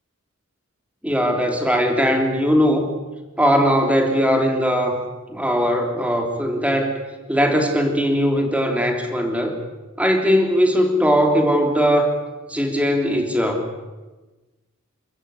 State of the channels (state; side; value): normal; both; correlation 0.73